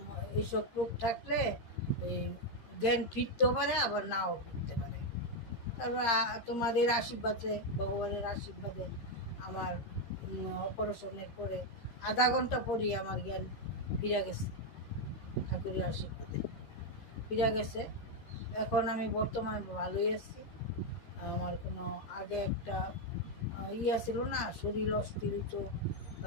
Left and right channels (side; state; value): right; late; 13 ms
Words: এইসব রোগ থাকলে জ্ঞান ফিরতেও পারে আবার নাও ফিরতে পারে। তারপর তোমাদের আশীর্বাদে, ভগবানের আশীর্বাদে আমার অপারেশনের পরে আধা ঘন্টা পরই আমার জ্ঞান ফিরে গেছে, ঠাকুরের আশীর্বাদে ফিরে গেছে। এখন আমি বর্তমানে ভালোই আছি। আমার কোনো আগে একটা ছিল না, শরীর অস্থির হতো,